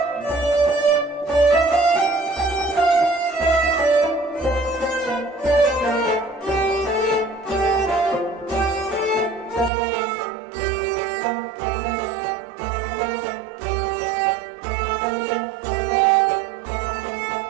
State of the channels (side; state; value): left; drops out; at 9.7 s